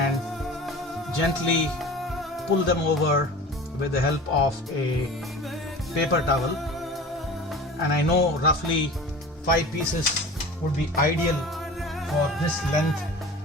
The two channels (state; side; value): normal; both; correlation 0.38